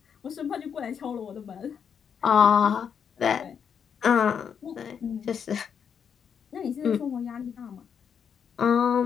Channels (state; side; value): quieter; right; 7.4 dB